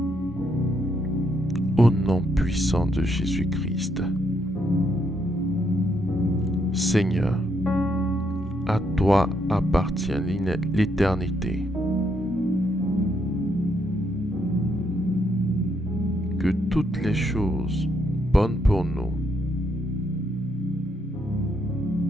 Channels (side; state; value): both; normal; correlation 0.75